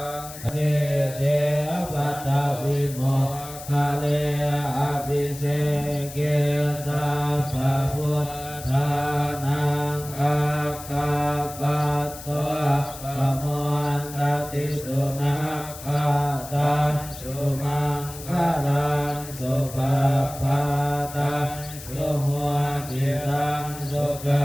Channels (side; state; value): left; noise; hiss, 14 dB below the sound